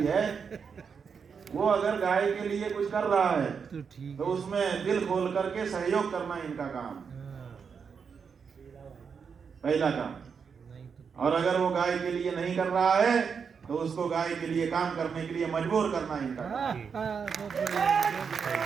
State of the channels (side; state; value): left; quieter; 6.2 dB